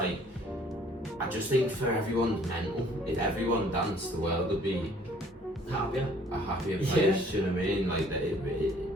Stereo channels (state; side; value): normal; both; correlation 0.57